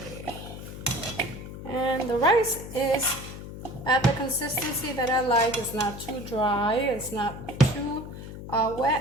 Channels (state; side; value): noise; left; hum, 11 dB below the sound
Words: And the rice is at the consistency that I like. It's not too dry, it's not too